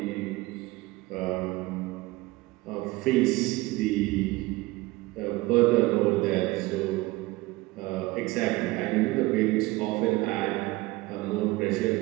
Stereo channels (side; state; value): left; quieter; 20.4 dB